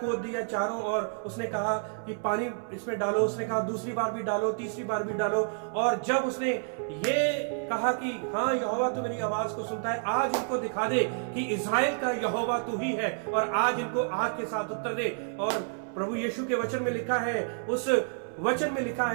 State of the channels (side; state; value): left; silent; 58 dB below the other